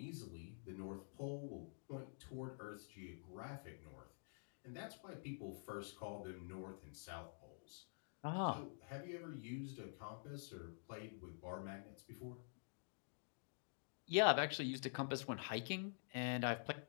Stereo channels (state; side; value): silent; right; digital silence